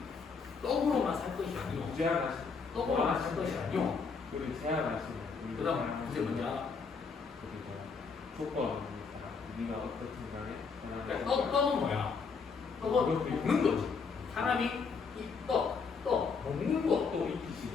떡으로만 살 것이 아니오. 떡으로만 살 것이 아니오. 그리고 제한하시는 그 다음 그게 뭔지 알아? 조건 네가 어떻든 간에 그러니까 떡은 뭐야? 떡은 먹는 거지. 사람이 이 떡 먹는 것도 또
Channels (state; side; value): quieter; right; 5.2 dB